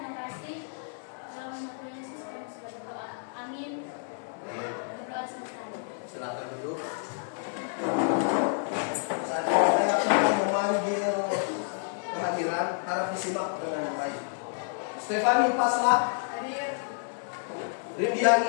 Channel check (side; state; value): right; silent; 58 dB below the other